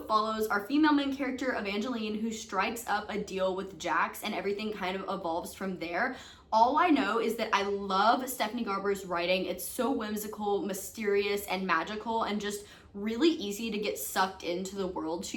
follows our female main character, Evangeline, who strikes up a deal with Jax, and everything kind of evolves from there. All I know is that I love Stephanie Garber's writing. It's so whimsical, mysterious, and magical, and just really easy to get sucked into the world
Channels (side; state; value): both; identical; correlation 1.00